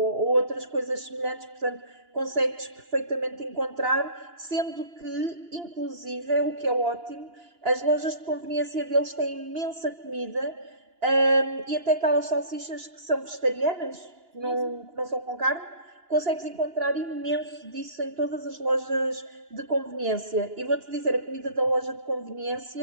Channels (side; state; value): left; late; 2.9 ms